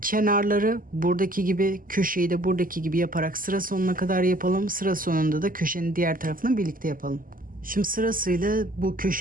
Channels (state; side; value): late; left; 0.41 ms